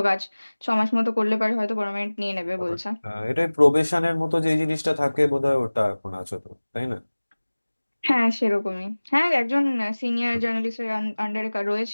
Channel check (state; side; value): inverted; both; correlation -1.00